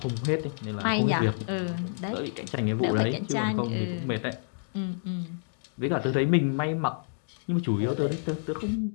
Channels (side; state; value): right; silent; digital silence